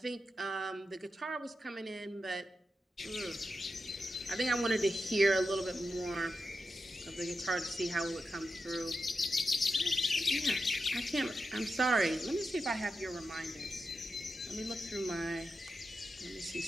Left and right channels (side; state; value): both; normal; correlation 0.89